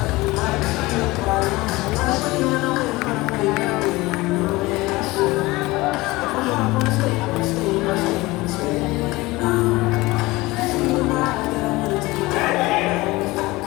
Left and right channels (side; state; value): right; quieter; 20.9 dB